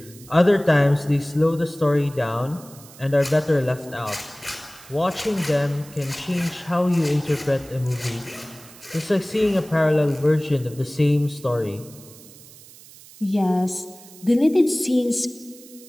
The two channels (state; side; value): noise; right; hiss, 21 dB below the sound